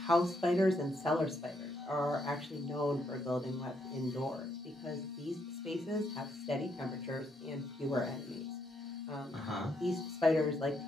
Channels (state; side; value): normal; both; correlation 0.76